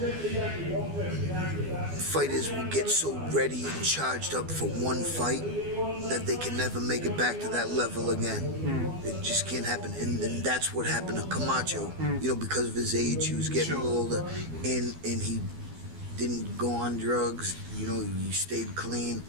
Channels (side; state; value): left; late; 12 ms